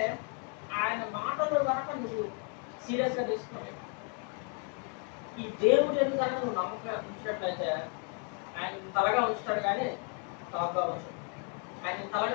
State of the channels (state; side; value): quieter; right; 40.0 dB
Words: ఆయన మాటలు కనుక నువ్వు సీరియస్గా తీసుకున్నావు. ఈ దేవుడు ఎందుకు కనుక నువ్వు నమ్మకం ఉంచినట్లయితే ఆయన తలగా ఉంచుతాడు, కానీ టాప్గా ఉంచుతాడు. ఆయన